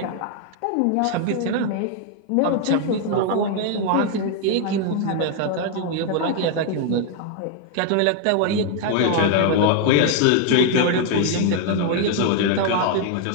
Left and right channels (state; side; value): different; both; correlation 0.00